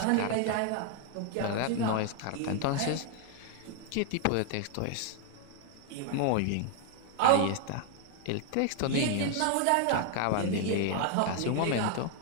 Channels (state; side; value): different; both; correlation 0.00